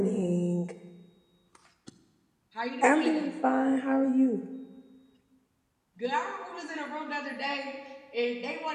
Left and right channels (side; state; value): both; identical; correlation 1.00